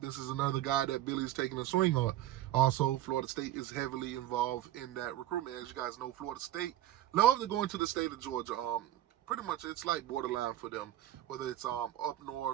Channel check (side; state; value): left; quieter; 13.5 dB